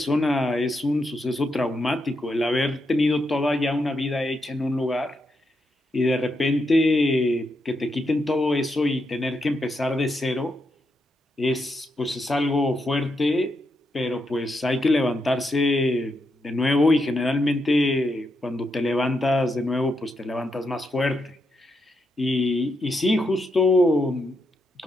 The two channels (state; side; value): normal; both; correlation 0.82